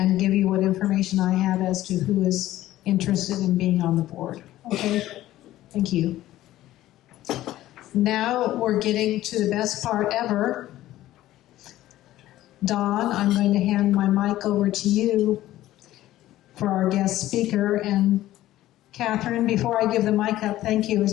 give you what information I have as to who is interested in being on the board. Okay? Thank you. Now we're getting to the best part ever. Dawn, I'm going to hand my mic over to you for our guest speaker. And Catherine, before I give the mic up, thank you. It's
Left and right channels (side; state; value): right; quieter; 14.7 dB